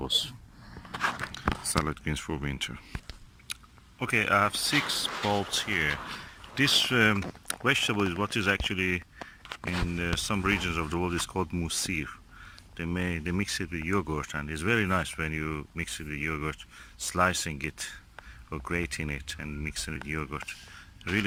Salad greens for winter. Okay, I have 6 bulbs here. This vegetable is what is actually in some regions of the world is called musir. They mix it with yogurt, and it's very nice when you mix it with yogurt, slicing it or grating it and mixing it with yogurt. It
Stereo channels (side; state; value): both; identical; correlation 1.00